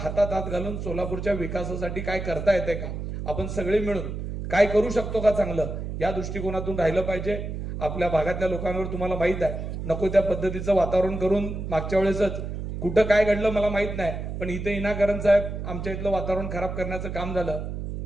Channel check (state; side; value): noise; right; hum, 5 dB below the sound